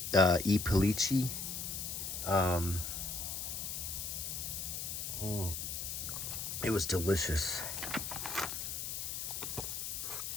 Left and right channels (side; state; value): left; noise; hiss, 4 dB below the sound